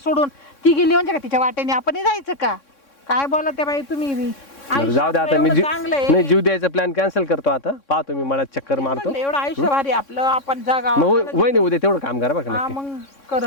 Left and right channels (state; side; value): late; right; 3.6 ms